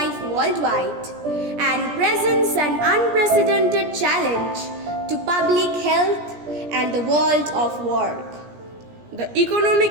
worldwide and presents an unprecedented challenge to public health and the world of work. The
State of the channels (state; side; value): late; left; 17 ms